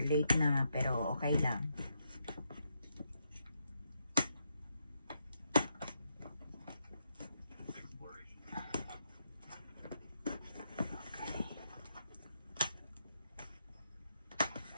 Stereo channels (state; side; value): inverted; both; correlation -0.79